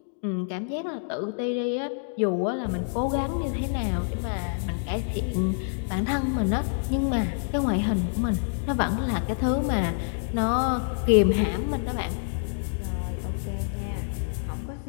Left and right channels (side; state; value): right; silent; digital silence